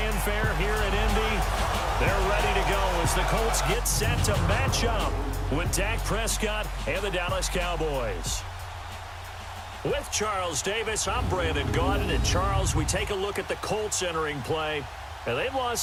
here in Indy. They're ready to go as the Colts get set to match up with Dak Prescott and the Dallas Cowboys. With Charles Davis, I'm Brandon Godden. And Charles, we take a look at the Colts entering play. And they've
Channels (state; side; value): identical; both; correlation 1.00